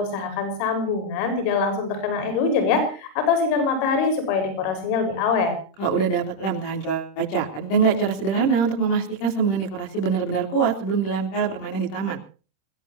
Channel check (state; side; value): late; right; 26 ms